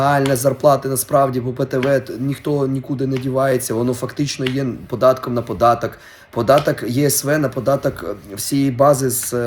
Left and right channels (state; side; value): identical; both; correlation 1.00